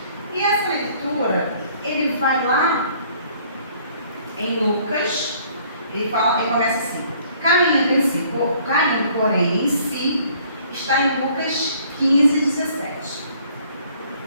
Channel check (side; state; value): both; inverted; correlation -0.59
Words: E essa leitura, ele vai lá em Lucas, ele começa assim: caindo em si, caindo, porém, em si, está em Lucas 15, 17.